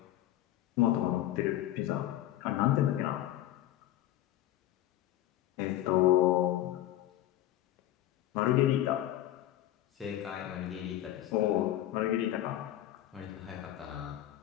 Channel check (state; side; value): quieter; right; 13.6 dB